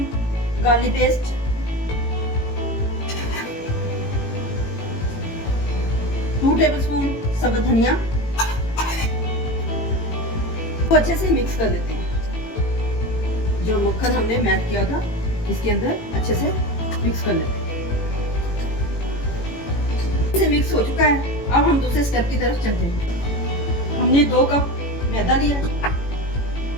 गार्लिक पेस्ट, 2 टेबलस्पून सब्ज धनिया को अच्छे से मिक्स कर लेते हैं। जो मक्खन हमने मैश किया था इसके अंदर अच्छे से मिक्स कर लेते हैं। इसे मिक्स हो चुका है। अब हम दूसरे स्टेप की तरफ चलते हैं। हमने 2 कप मैदा लिया।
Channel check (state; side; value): late; right; 18 ms